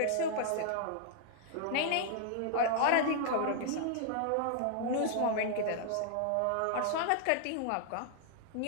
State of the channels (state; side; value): different; both; correlation 0.00